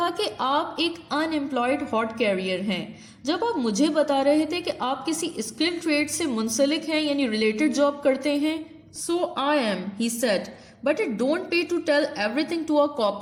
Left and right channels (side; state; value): both; identical; correlation 1.00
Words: कि आप एक अनएम्प्लॉयड हॉट कैरियर हैं, जब आप मुझे बता रहे थे कि आप किसी स्किल्ड ट्रेड से मुंसलिक हैं, यानी रिलेटेड जॉब करते हैं। So I am, he said, but it don't pay to tell everything to a